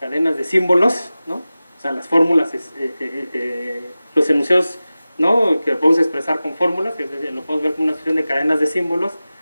de símbolos, ¿no?, o sea, las fórmulas, los enunciados, ¿no?, que podemos expresar con fórmulas, lo podemos ver como una sucesión de cadenas de símbolos,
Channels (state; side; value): inverted; both; correlation -0.96